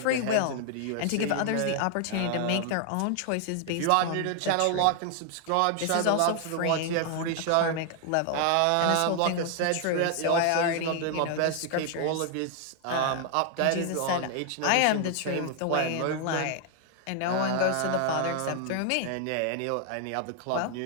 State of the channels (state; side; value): different; both; correlation 0.00